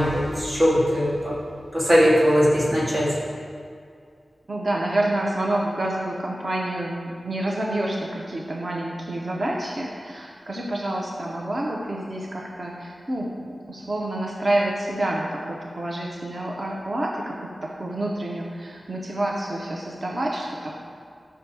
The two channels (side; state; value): both; normal; correlation 0.95